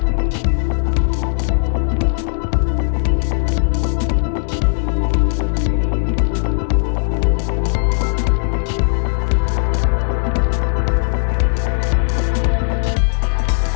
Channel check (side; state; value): right; silent; digital silence